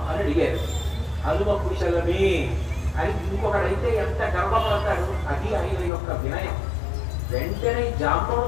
అని అడిగారు. హనుమ కుశలమే అని ఇంకొకడైతే ఎంత గర్వపడతాడు. అది ఆయన యొక్క వినయం. వెంటనే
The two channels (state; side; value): drops out; right; at 5.9 s